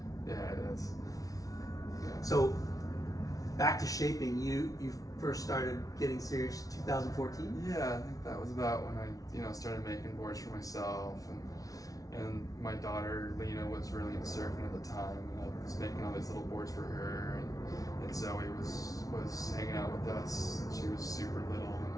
Yeah, it is. Yeah. So back to shaping, you first started getting serious in 2014? Yeah, I think that was about when I, started making boards for myself, and my daughter Lena was really into surfing at the time, and I was making all these little boards for her, and Zoe was hanging out with us. She was super little,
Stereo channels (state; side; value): late; right; 0.18 ms